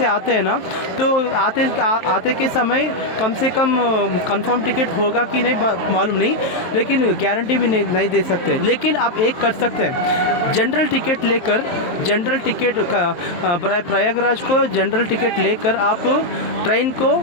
आते हैं ना, तो आते के समय कम से कम कंफर्म टिकट होगा कि नहीं मालूम नहीं, लेकिन गारंटी भी नहीं दे सकते। लेकिन आप एक कर सकते हैं, जनरल टिकट लेकर प्रयागराज को जनरल टिकट लेकर आप ट्रेन को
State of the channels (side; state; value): right; late; 23 ms